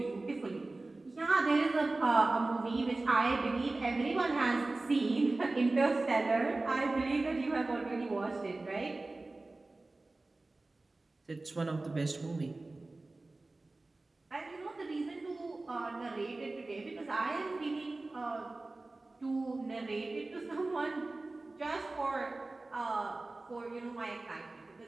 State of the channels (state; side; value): quieter; left; 3.1 dB